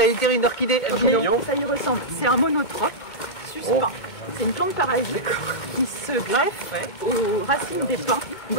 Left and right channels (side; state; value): right; late; 1.8 ms